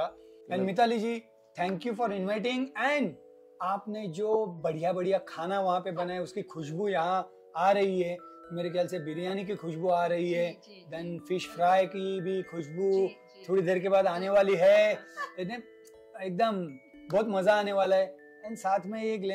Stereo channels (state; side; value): identical; both; correlation 1.00